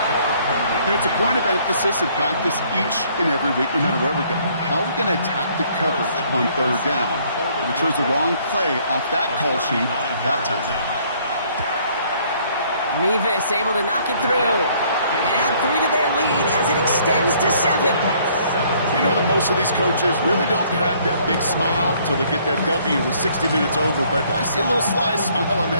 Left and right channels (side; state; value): both; inverted; correlation -0.62